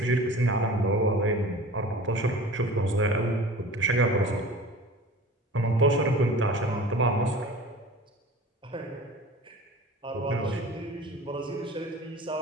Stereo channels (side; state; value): both; normal; correlation 0.40